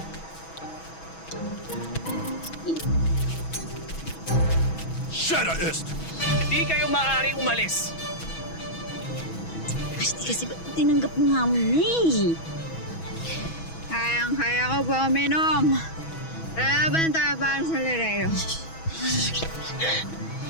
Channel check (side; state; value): right; late; 6.1 ms